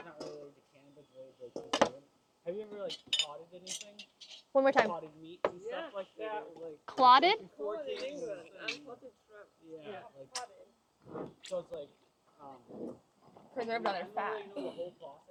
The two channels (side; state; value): both; identical; correlation 1.00